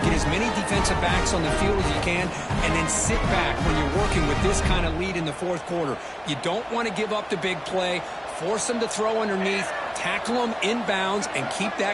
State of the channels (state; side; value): identical; both; correlation 1.00